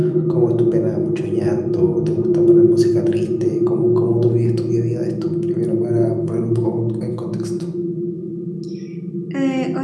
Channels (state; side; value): identical; both; correlation 1.00